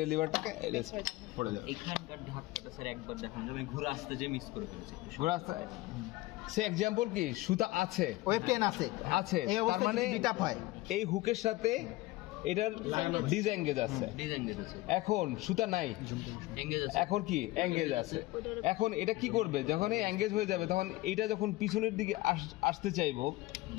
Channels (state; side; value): quieter; right; 18.9 dB